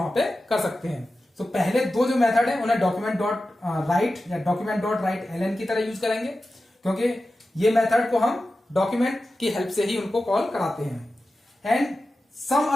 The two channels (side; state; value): both; normal; correlation 0.93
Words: पे कर सकते हैं। तो पहले दो जो मेथड है उन्हें डॉक्यूमेंट डॉट राइट या डॉक्यूमेंट डॉट राइट एलएन की तरह यूज करेंगे, क्योंकि ये मेथड को हम डॉक्यूमेंट की हेल्प से ही उनको कॉल कराते हैं। And some